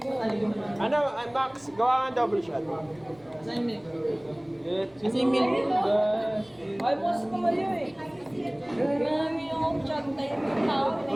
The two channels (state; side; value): noise; left; rumble, 29 dB below the sound